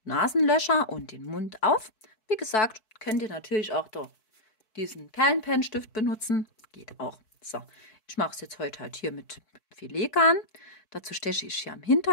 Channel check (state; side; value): late; right; 4.6 ms